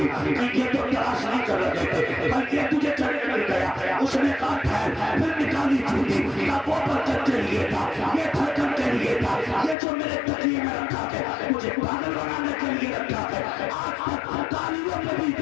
ये तो तलाश नहीं कर रहे थे, बल्कि तुझे चढ़ मिल गया। उसने कहा ठहर, फिर निकाली जूती, वो बरकत के लिए था, ये धड़कन के लिए था, ये जो मेरे तकिए में रखा है मुझे पागल बनाने के लिए रखा है। आज तक तालियों में भी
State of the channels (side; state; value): right; drops out; at 9.8 s